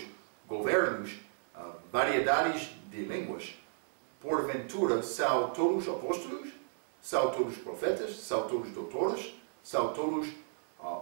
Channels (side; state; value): left; silent; digital silence